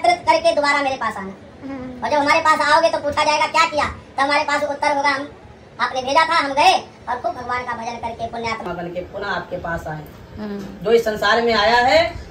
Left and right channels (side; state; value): both; identical; correlation 1.00